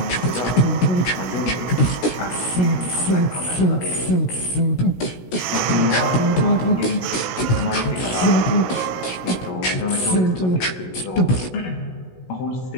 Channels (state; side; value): late; right; 16 ms